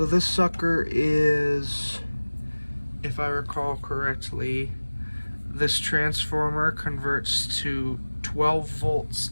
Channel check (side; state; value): both; inverted; correlation -1.00